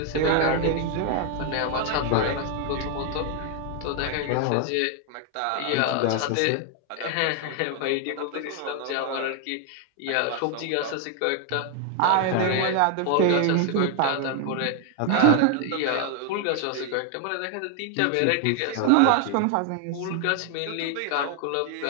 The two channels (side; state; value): both; different; correlation 0.00